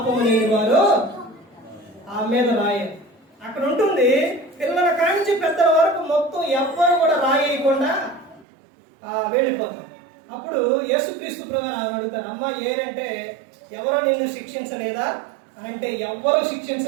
లేని వారు ఆ మీద రాయారు. అక్కడ ఉంటుంది, పిల్లల కాంచి పెద్దల వరకు మొత్తం ఎవ్వరు కూడా రాయకుండా వెళ్ళిపోతారు. అప్పుడు యేసుక్రీస్తు ప్రభువు అడుగుతారు, అమ్మ ఏరంటే ఎవరో నిన్ను శిక్షించలేదా అని అంటే, ఎవ్వరూ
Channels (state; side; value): drops out; left; at 8.5 s